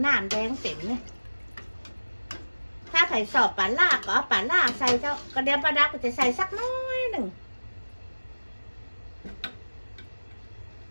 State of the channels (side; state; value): both; inverted; correlation -1.00